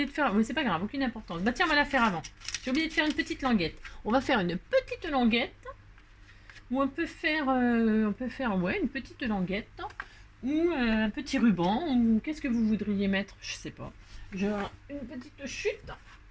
de faire, mais c'est pas grave, aucune importance. Bah tiens, on va la faire avant. J'ai oublié de faire une petite languette. On va faire une petite languette, ou on peut faire, ouais, une petite languette, ou un petit ruban, ou qu'est-ce que vous voudriez mettre? Je sais pas. Genre, une petite chute.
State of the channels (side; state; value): both; identical; correlation 1.00